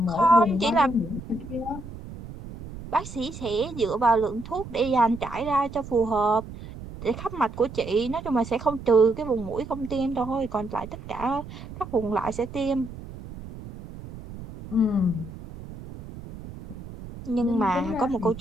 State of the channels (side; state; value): right; noise; rumble, 13 dB below the sound